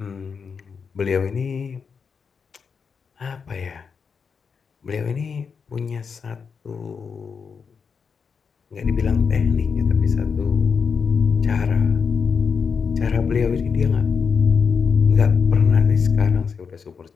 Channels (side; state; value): right; quieter; 5.8 dB